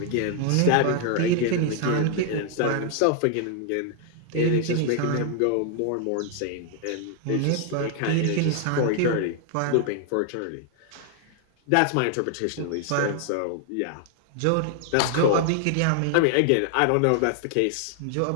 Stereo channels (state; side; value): different; both; correlation 0.00